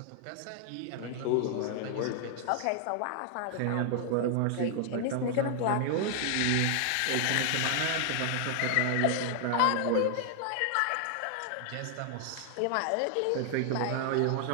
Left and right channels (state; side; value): different; both; correlation 0.00